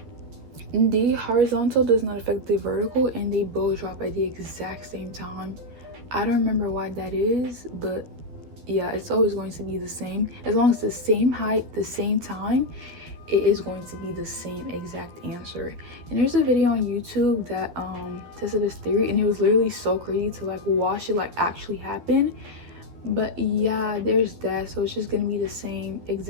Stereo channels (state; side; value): late; left; 12 ms